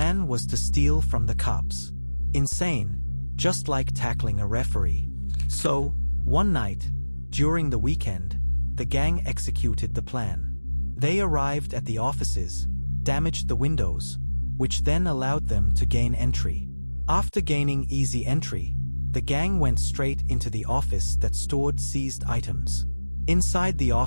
was to steal from the cops. Insane, just like tackling a referee. So, one night, during the weekend, the gang executed the plan. They arrived at the offices, damaged the windows, which then allowed them to gain entry. After gaining easy entry, the gang went straight into the office that stored seized items. Inside the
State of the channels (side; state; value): both; inverted; correlation -1.00